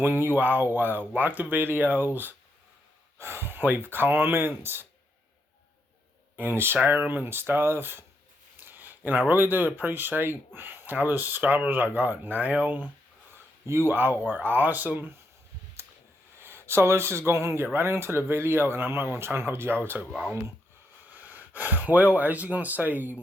you all like the videos, leave comments, and share them and stuff. And I really do appreciate all the subscribers I got now. You all are awesome. So let's just go ahead and get right into the video, and I'm not going to try and hold y'all too long. Well, as you can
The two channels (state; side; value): normal; both; correlation 0.80